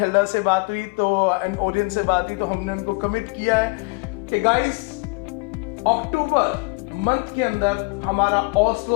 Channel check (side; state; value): right; quieter; 29.5 dB